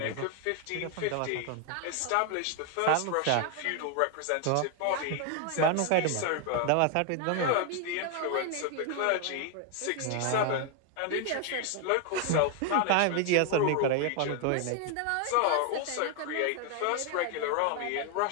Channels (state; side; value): different; both; correlation 0.01